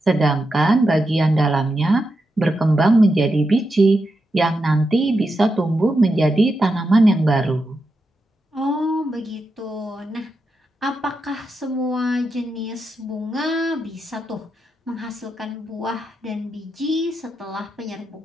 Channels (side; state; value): both; normal; correlation 0.86